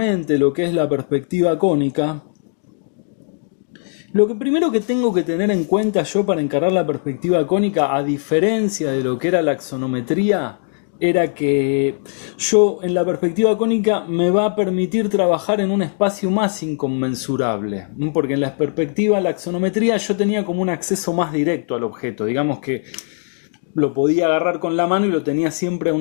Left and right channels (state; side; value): silent; right; 61 dB below the other